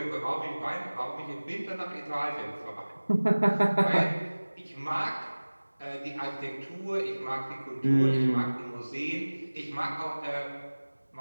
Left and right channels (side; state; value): both; inverted; correlation -1.00